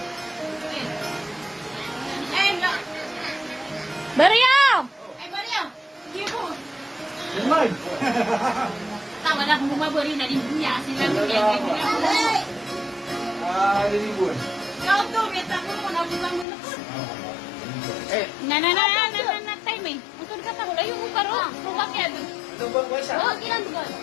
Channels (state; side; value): drops out; right; at 16.4 s